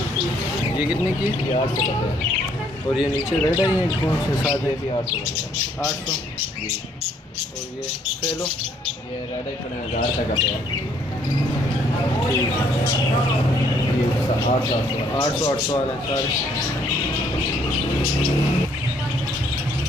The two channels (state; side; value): normal; both; correlation 0.66